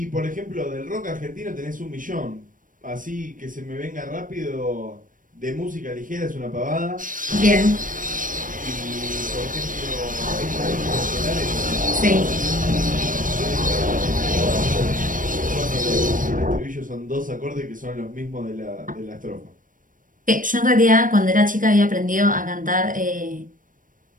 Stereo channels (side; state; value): left; late; 0.39 ms